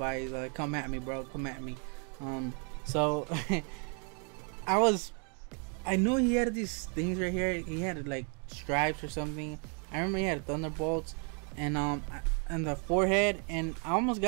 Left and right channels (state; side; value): quieter; left; 38.7 dB